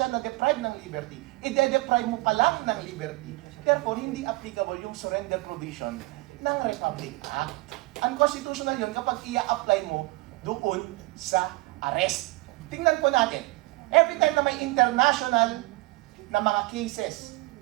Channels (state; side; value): quieter; left; 22.8 dB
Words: na-deprive ng liberty. I-deprive mo pa lang ng liberty. Therefore, hindi applicable yung surrender provision ng Republic Act. Unconstitutional yun kapag i-apply mo doon sa arrest. Tingnan po natin. Every time na may international na mga cases